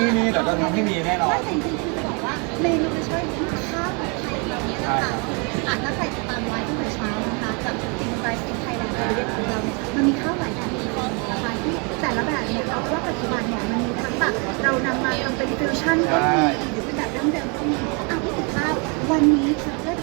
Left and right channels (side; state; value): left; quieter; 33.5 dB